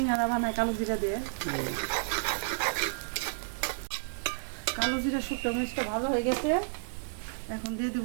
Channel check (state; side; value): silent; left; digital silence